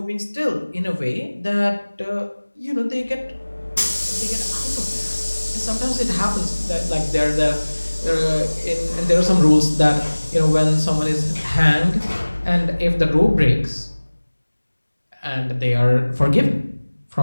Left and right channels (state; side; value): inverted; both; correlation -1.00